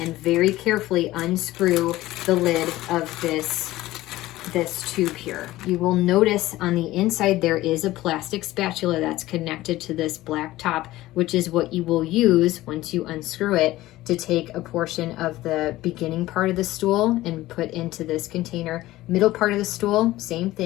very carefully unscrew the lid of this tube here. You will notice on the inside there is a plastic spatula that's connected to this black top, which is what you will use once you unscrew it to take a portion of the beginning part of the stool and put into this container, middle part of the stool, same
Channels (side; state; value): right; quieter; 16.7 dB